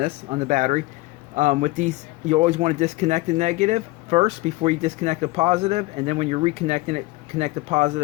battery. With these, you always want to disconnect the negative first before you disconnect the positive, and then when you're reconnecting it, connect the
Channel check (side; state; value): right; quieter; 20.8 dB